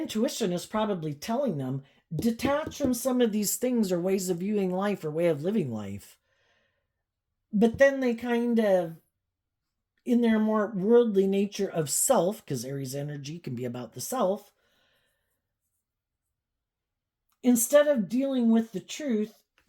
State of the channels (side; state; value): both; identical; correlation 1.00